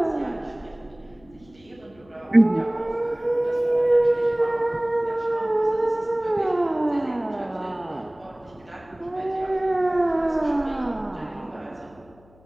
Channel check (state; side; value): noise; left; hum, 28 dB below the sound